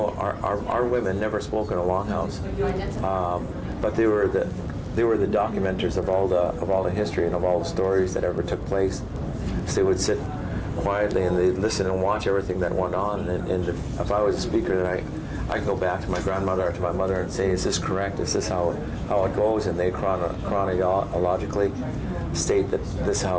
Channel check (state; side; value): identical; both; correlation 1.00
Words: our women never spoke in a longhouse, but they were the documenters of all the history and of all the stories that ever took place. So they would sit quietly and they'd listen and watch everything that went on. And if I was a speaker, then I could go back to my grandmother or to my mother and say, "Is this correct? Is this how it goes?" And they chronologically state that this